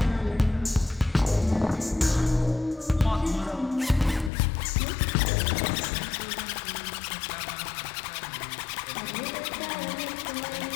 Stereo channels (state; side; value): drops out; right; at 4.3 s